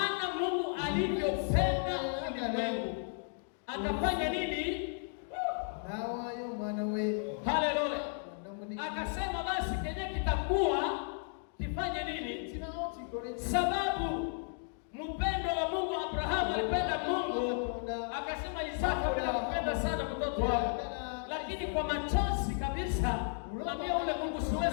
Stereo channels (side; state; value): right; silent; 55 dB below the other